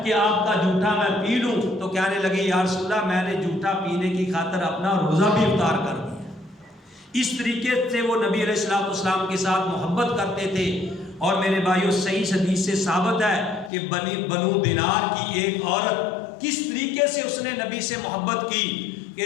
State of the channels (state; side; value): drops out; right; at 13.7 s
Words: کہ آپ کا جھوٹا میں پی لوں، تو کہنے لگی یا رسول اللہ میں نے جھوٹا پینے کی خاطر اپنا روزہ بھی افطار کر دیا۔ اس طریقے سے وہ نبی علیہ الصلوۃ والسلام کے ساتھ محبت کرتے تھے۔ اور میرے بھائیوں صحیح حدیث سے ثابت ہے کہ بنو دینار کی ایک عورت کس طریقے سے اس نے نبی سے محبت کی